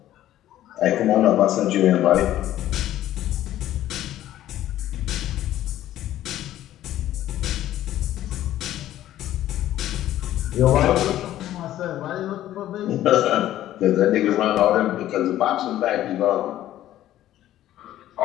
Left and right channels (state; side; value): quieter; right; 13.2 dB